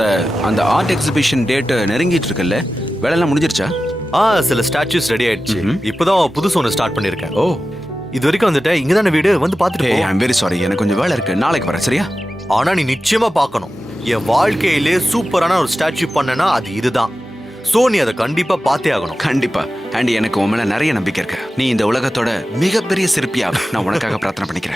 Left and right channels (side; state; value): both; normal; correlation 0.94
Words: அந்த ஆர்ட் எக்ஸிபிஷன் டேட் நெருங்கிட்டு இருக்குல்ல, வேலையெல்லாம் முடிஞ்சிருச்சா? சில ஸ்டாச்சுஸ் ரெடி ஆயிடுச்சு. இப்பதான் புதுசு ஒன்று ஸ்டார்ட் பண்ணிருக்கேன். ஓ, இது வரைக்கும் வந்துட்டேன். இங்க தானே வீடு, வந்து பாத்துட்டு போ. ஐம் வெரி சாரி, எனக்கு கொஞ்சம் வேலை இருக்கு. நாளைக்கு வரேன், சரியா? ஆனா நீ நிச்சயமா பார்க்கணும். என் வாழ்க்கையிலே சூப்பரான ஒரு ஸ்டாச்சு பண்ணனா அது இதுதான். சோ நீ அதை கண்டிப்பா பார்த்தே ஆகணும். கண்டிப்பா. அண்ட் எனக்கு உன் மேல நிறைய நம்பிக்கை இருக்கு. நீ இந்த உலகத்தோட மிகப்பெரிய சிற்பியா நான் உனக்காக பிரார்த்தனை